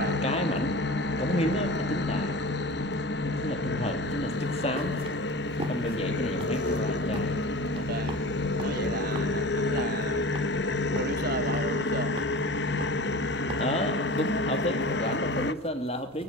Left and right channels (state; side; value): normal; both; correlation 0.35